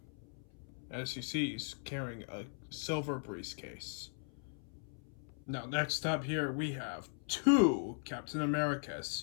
As you see, he's carrying a silver briefcase. Now, next up here, we have two Captain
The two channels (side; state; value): right; silent; 52 dB below the other